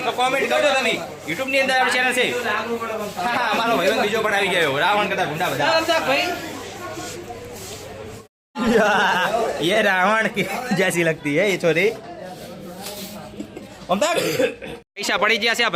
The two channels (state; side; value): identical; both; correlation 1.00